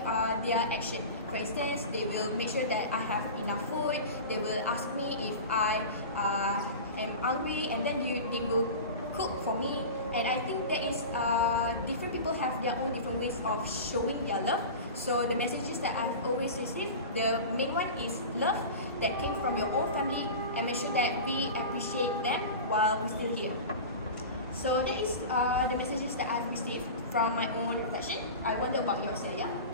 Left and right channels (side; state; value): both; inverted; correlation -0.31